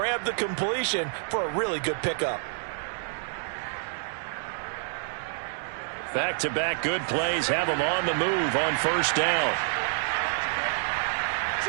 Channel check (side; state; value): left; silent; 59 dB below the other